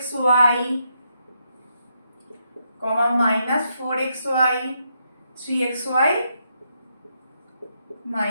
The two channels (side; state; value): both; inverted; correlation -0.79